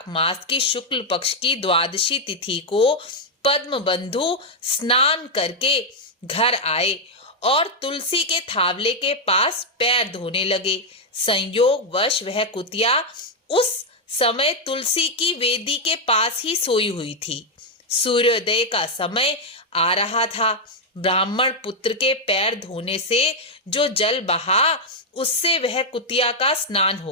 मास की शुक्ल पक्ष की द्वादशी तिथि को पद्मबंधु स्नान करके घर आए और तुलसी के थावले के पास पैर धोने लगे। संयोगवश वह कुतिया उस समय तुलसी की वेदी के पास ही सोई हुई थी। सूर्योदय का समय आ रहा था। ब्राह्मण पुत्र के पैर धोने से जो जल बहा, उससे वह कुतिया का स्नान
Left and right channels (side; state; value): both; normal; correlation 0.01